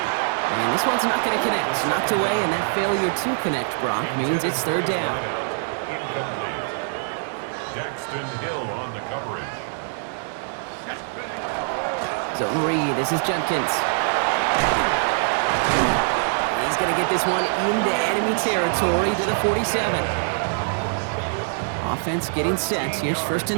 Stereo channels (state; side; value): silent; left; digital silence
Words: And this one's not going to connect. Knocked away, and that failure to connect, Brock, means it's 3rd down. Hill on the coverage. Zone read. This is Junkins. He's going to get this one into enemy territory to the 47. Offense getting set. Here's 1st